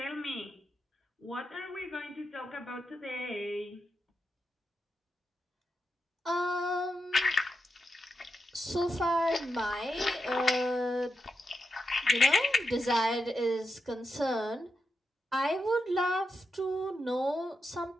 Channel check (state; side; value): normal; both; correlation 0.86